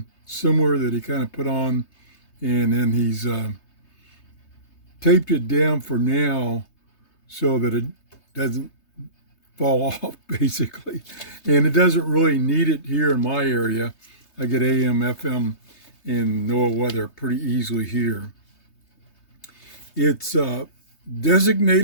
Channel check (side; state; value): right; late; 3.3 ms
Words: similar that he kind of put on, and then he's taped it down for now so that it doesn't fall off, basically. And it doesn't really need it here in my area. I get AM, FM, and NOAA weather pretty easily here. It's